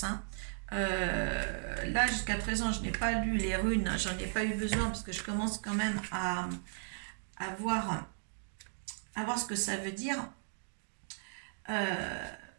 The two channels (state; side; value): silent; left; digital silence